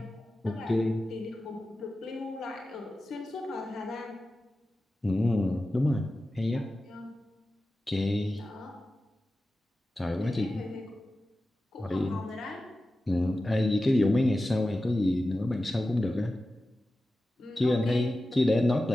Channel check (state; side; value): normal; both; correlation 0.94